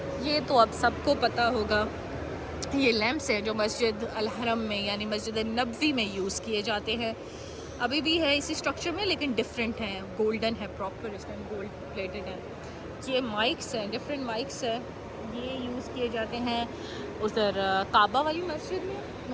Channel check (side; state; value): both; identical; correlation 1.00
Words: ये तो अब सबको पता होगा, ये लैंप्स हैं जो मस्जिद अल हरम में यानी मस्जिद नबवी में यूज़ किए जाते हैं। अभी भी है इसी स्ट्रक्चर में लेकिन डिफरेंट हैं, गोल्डन है, प्रॉपर इसमें गोल्ड प्लेटेड है। ये माइक्स हैं, डिफरेंट माइक्स हैं, ये यूज़ किए जाते हैं उधर काबा वाली मस्जिद में,